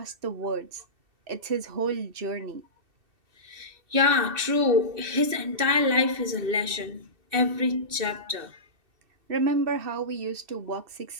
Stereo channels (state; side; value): late; left; 2.7 ms